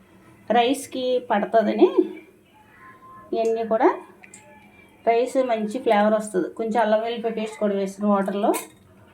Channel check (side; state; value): both; identical; correlation 1.00